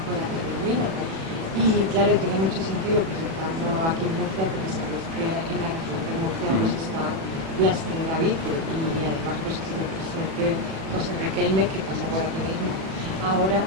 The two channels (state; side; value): late; left; 37 ms